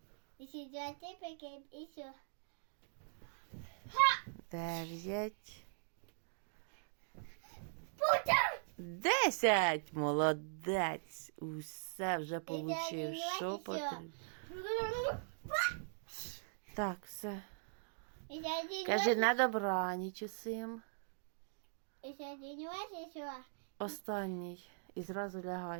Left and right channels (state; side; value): silent; left; digital silence